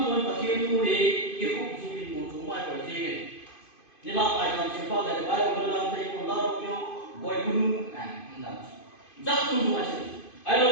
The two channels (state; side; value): late; right; 2.5 ms